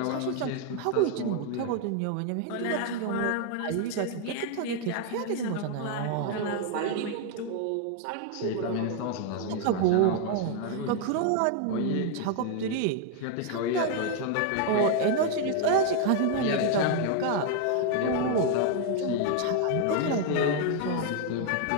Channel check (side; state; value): both; different; correlation 0.00